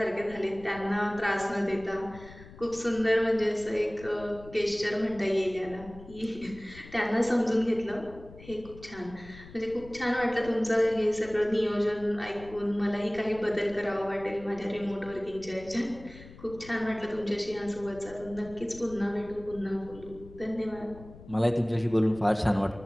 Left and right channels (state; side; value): noise; left; rumble, 18 dB below the sound